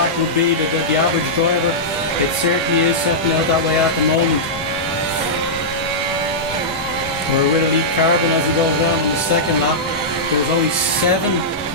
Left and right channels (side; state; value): both; normal; correlation -0.11